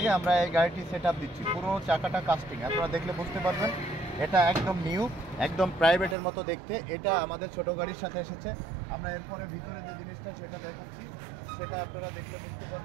আমরা এই গাড়িটি সেট আপ দিচ্ছি। পুরো চাকাটা কাস্টিং, আপনারা দেখলে বুঝতে পারবেন। এটা একদম নিউ, একদম প্রাইভেটের মতো দেখতে। এটা আমাদের ছোট গাড়ির সাথে এসেছে। আমরা এরপরে ভিতরে যে জিনিসটা সেটা দেখাচ্ছি, সেটা আপনারা দেখলে বুঝতে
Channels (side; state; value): left; drops out; at 6.2 s